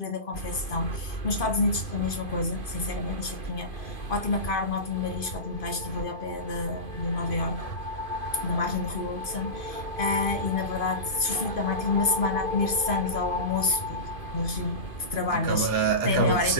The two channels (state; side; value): late; right; 2.5 ms